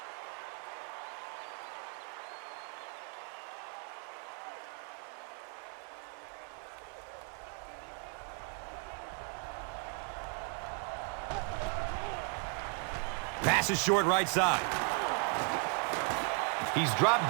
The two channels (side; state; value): left; quieter; 38.7 dB